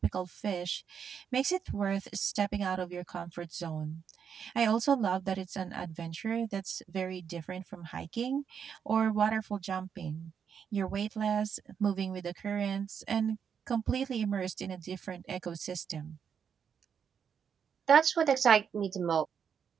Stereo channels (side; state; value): left; quieter; 7.4 dB